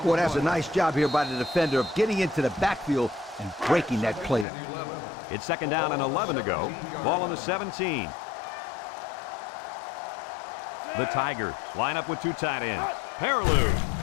Boy, that's a nice job here by the defender of getting into the backfield and breaking that play. It's 2nd down and 11 to go. Ball on the 17. The Tigers line up with 2 tight ends. Peterson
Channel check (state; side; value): drops out; right; at 4.5 s